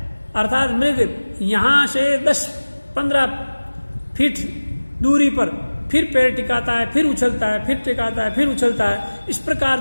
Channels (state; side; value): inverted; both; correlation -1.00